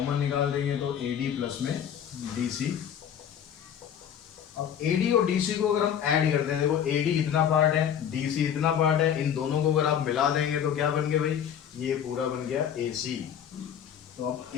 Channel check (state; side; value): quieter; right; 8.9 dB